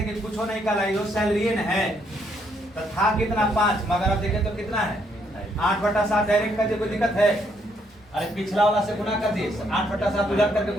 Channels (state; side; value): normal; both; correlation 0.72